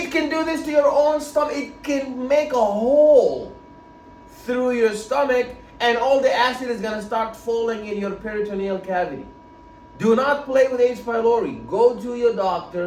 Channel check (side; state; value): both; identical; correlation 1.00